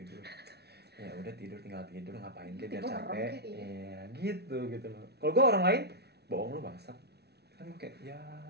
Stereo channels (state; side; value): late; left; 0.48 ms